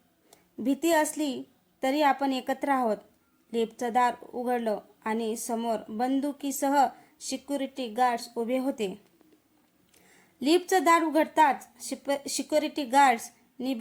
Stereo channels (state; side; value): identical; both; correlation 1.00